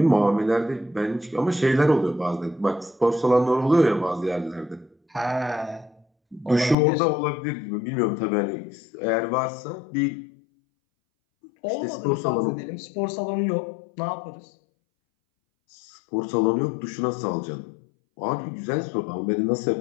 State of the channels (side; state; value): right; drops out; at 6.8 s